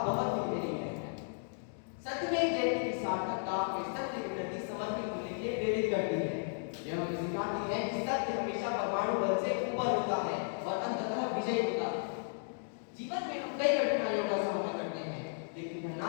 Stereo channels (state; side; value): silent; right; digital silence